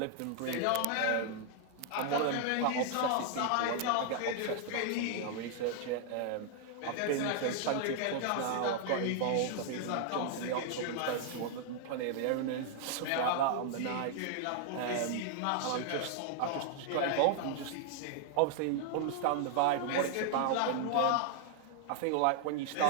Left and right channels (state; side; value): different; both; correlation 0.00